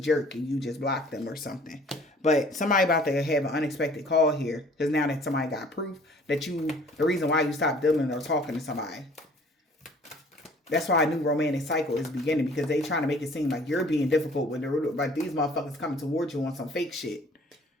and you just blocked them or something. But somebody about to have an unexpected call here, because now that somebody got proof that the reason why you stopped dealing or talking to somebody. That's why a new romantic cycle is beginning, because they trying to make it seem like you're being difficult when like these motherfuckers coming towards you on some fake shit.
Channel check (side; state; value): both; normal; correlation 0.53